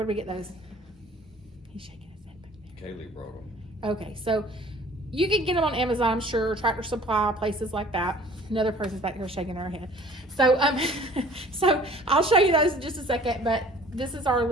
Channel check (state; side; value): normal; both; correlation 0.50